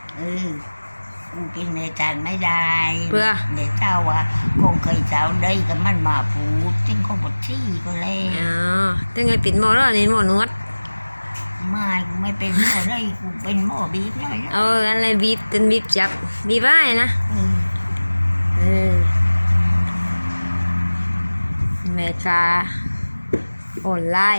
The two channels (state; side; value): inverted; both; correlation -1.00